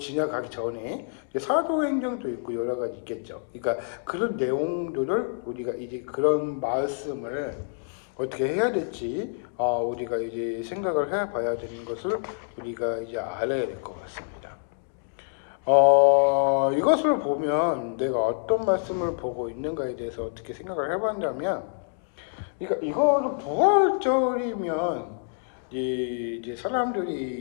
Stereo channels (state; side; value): silent; right; digital silence